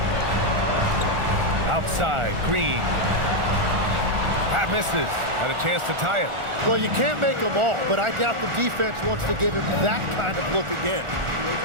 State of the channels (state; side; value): late; left; 1.4 ms